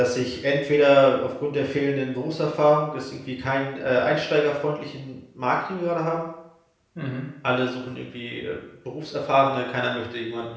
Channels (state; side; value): identical; both; correlation 1.00